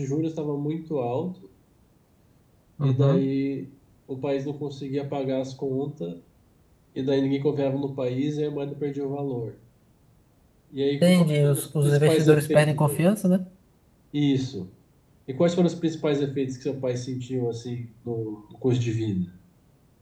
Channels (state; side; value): identical; both; correlation 1.00